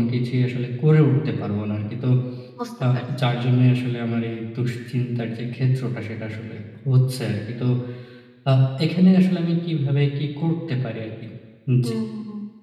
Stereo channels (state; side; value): identical; both; correlation 1.00